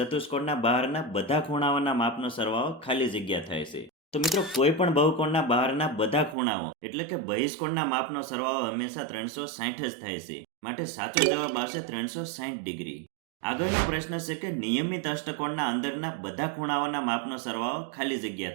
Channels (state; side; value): drops out; left; at 6.4 s